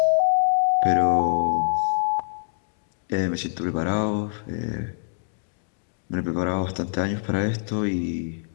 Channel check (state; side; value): silent; right; digital silence